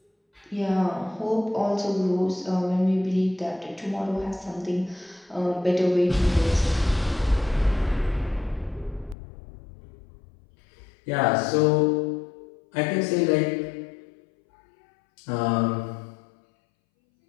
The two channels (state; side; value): drops out; right; at 9.2 s